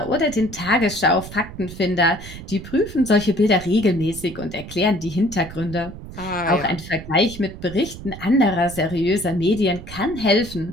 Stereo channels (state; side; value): noise; right; rumble, 13 dB below the sound